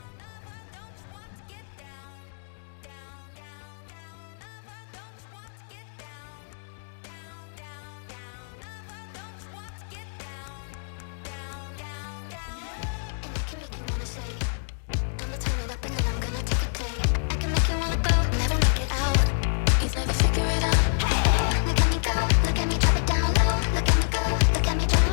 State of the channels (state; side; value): silent; right; digital silence